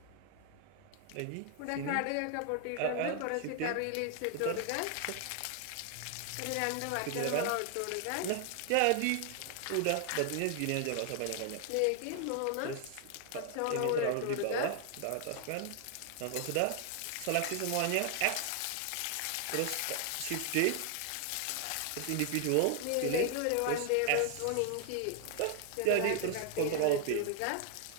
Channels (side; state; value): both; different; correlation 0.00